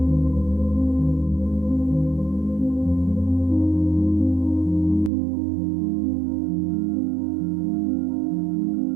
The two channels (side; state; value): left; drops out; at 5.1 s